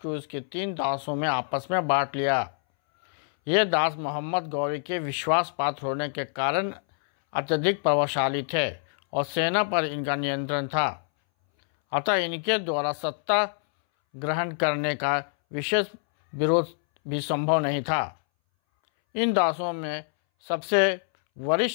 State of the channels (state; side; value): silent; right; 61 dB below the other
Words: को उसके 3 दासों में आपस में बांट लिया। ये दास मोहम्मद गौरी के विश्वास पात्र होने के कारण अत्यधिक प्रभावशाली थे और सेना पर इनका नियंत्रण था, अतः इनके द्वारा सत्ता ग्रहण करने का विशेष विरोध भी संभव नहीं था। इन दासों में सबसे